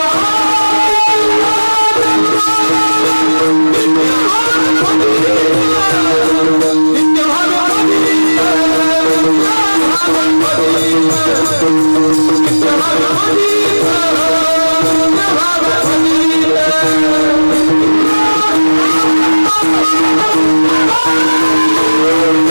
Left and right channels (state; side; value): inverted; both; correlation -1.00